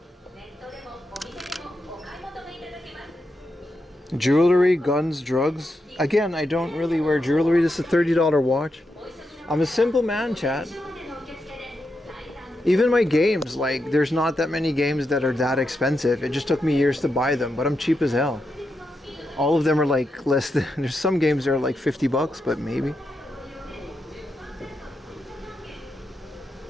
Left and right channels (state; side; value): normal; both; correlation 0.85